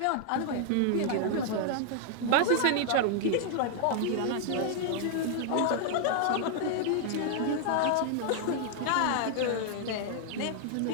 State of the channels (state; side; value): different; both; correlation -0.01